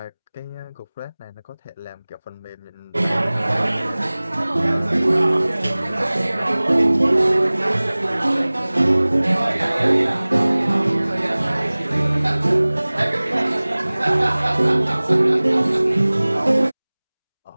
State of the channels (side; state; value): both; inverted; correlation -1.00